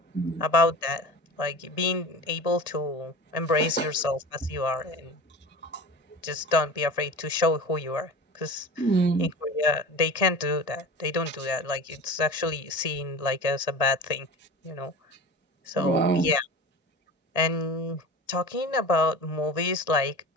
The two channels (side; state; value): right; late; 1.6 ms